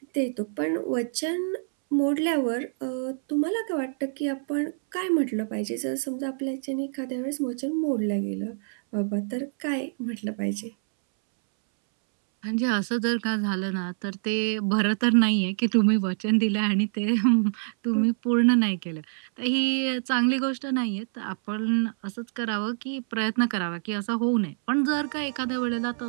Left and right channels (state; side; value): silent; left; 61 dB below the other